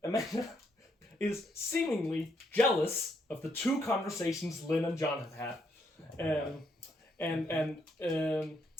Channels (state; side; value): normal; both; correlation 0.75